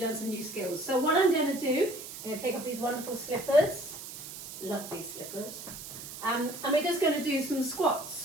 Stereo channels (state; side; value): noise; right; hiss, 11 dB below the sound